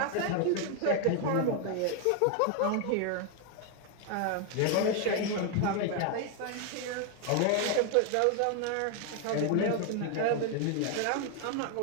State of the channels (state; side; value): different; both; correlation 0.01